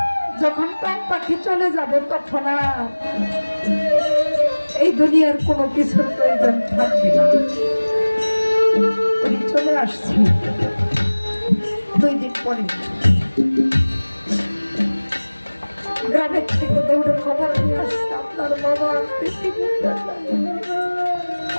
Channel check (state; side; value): inverted; both; correlation -1.00